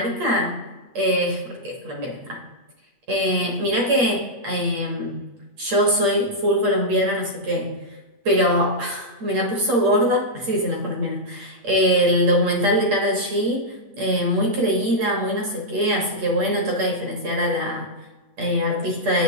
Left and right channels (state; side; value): late; left; 8.6 ms